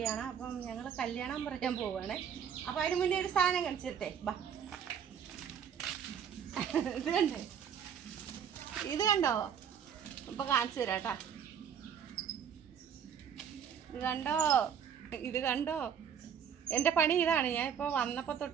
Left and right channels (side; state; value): left; quieter; 8.0 dB